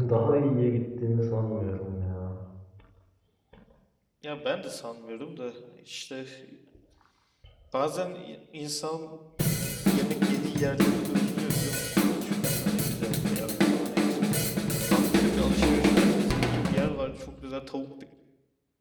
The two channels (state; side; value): identical; both; correlation 1.00